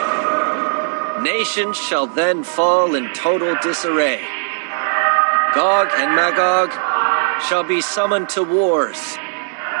Nations shall then fall in total disarray. Gog and Magog shall be summoned to wars,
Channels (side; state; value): left; silent; digital silence